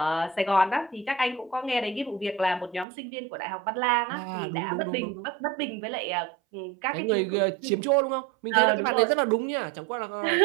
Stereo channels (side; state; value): left; drops out; at 2.9 s